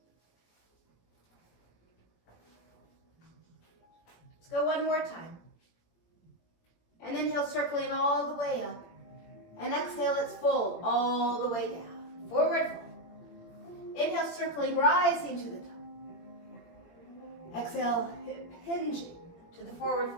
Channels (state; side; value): late; right; 18 ms